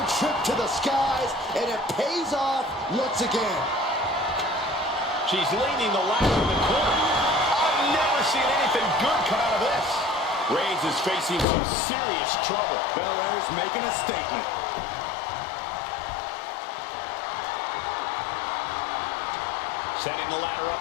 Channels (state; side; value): drops out; right; at 11.5 s